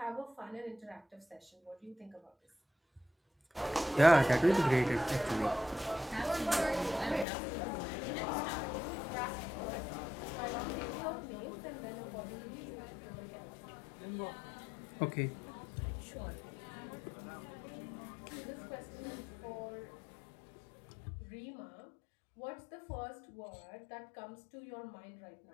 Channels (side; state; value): right; drops out; at 7.2 s